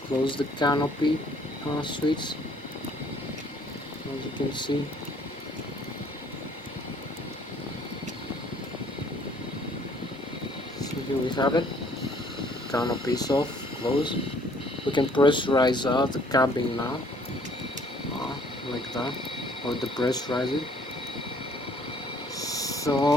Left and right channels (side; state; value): both; normal; correlation 0.60